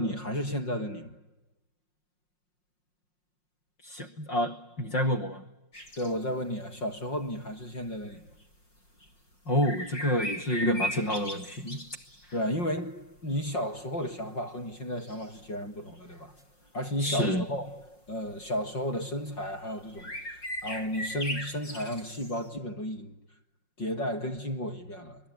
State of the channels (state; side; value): late; right; 5.6 ms